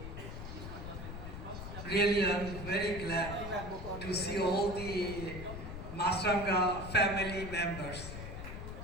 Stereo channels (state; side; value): noise; left; rumble, 8 dB below the sound